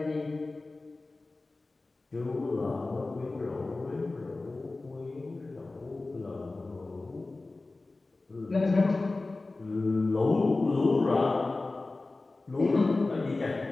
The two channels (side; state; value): right; quieter; 3.3 dB